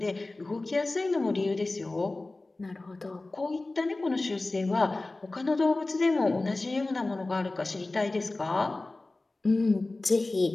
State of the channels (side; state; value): right; quieter; 3.1 dB